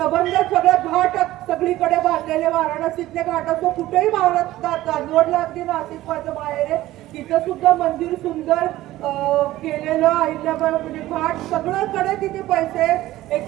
सगळं घाट सगळीकडे बांधलेले, वाराणसीतले घाट असो कुठेही महाराष्ट्रात चांदवडला अगदी नाशिक माझं बाहेर आहे तिथं सुद्धा मंदिर सुंदर केलेलं अहिल्याबाई म्हणजे घाट सगळ्याकडे तिथे पैसे हे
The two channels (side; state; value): left; quieter; 15.9 dB